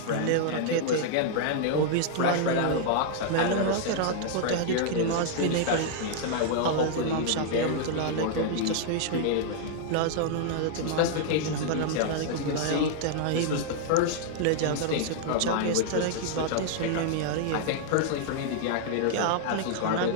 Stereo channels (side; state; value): both; different; correlation -0.01